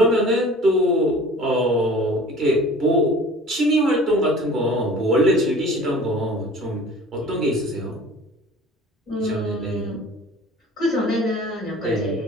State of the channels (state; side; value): normal; both; correlation 0.45